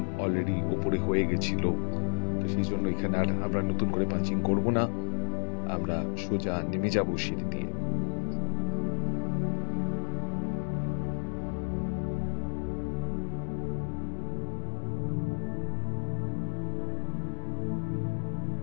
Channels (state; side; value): silent; right; digital silence